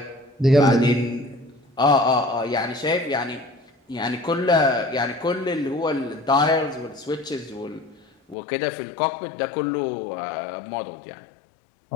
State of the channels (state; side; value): drops out; right; at 8.3 s